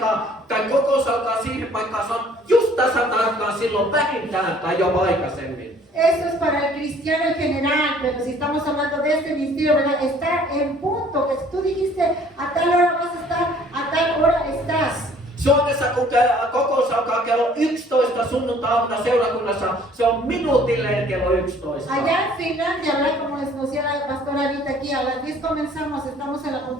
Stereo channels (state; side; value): normal; both; correlation 0.56